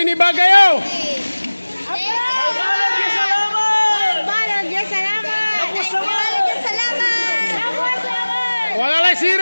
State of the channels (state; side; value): inverted; both; correlation -1.00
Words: Bagayo. Wala lang